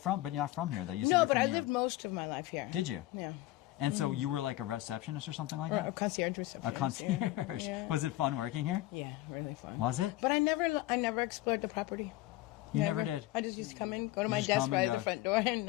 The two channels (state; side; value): quieter; right; 16.8 dB